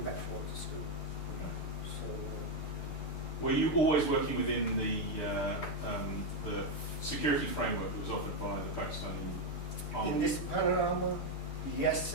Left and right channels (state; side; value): late; right; 6.9 ms